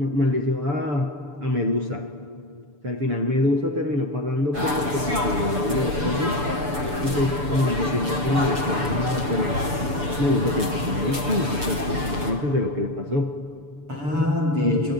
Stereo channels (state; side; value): late; left; 6.9 ms